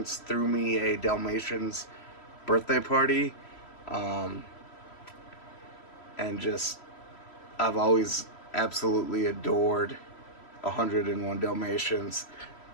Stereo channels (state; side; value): late; right; 3.1 ms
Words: threw me a Dalmatians birthday party, and just I've always absolutely adored 101 Dalmatians.